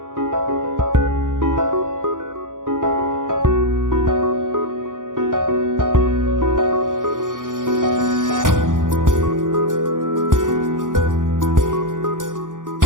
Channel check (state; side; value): late; left; 0.88 ms